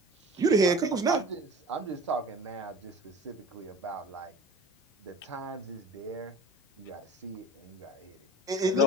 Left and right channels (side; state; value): both; normal; correlation 0.40